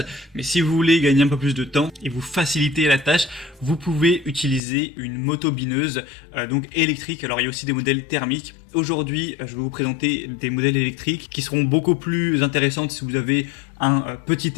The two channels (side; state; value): right; drops out; at 4.6 s